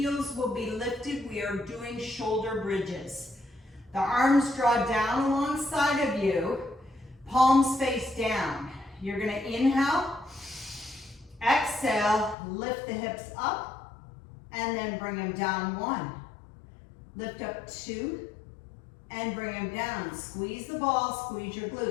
will be lifted. We are doing shoulder bridges. The arms draw down alongside of you, palms face down. You're going to inhale, exhale, lift the hips up, and then bring them down. 1. Lift up 2, and bring them down. Squeeze the ball, squeeze your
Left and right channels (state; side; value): drops out; right; at 12.4 s